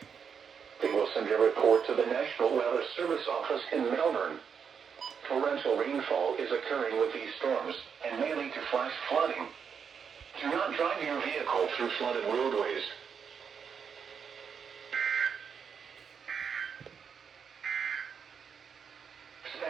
They will send a report to the National Weather Service office in Melbourne. Torrential rainfall is occurring with these storms and may lead to flash flooding. Do not drive your vehicle through flooded roadways.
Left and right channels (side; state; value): left; quieter; 6.8 dB